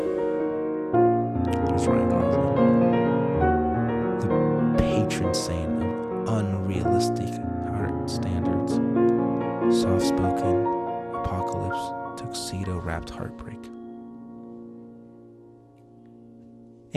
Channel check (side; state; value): both; identical; correlation 1.00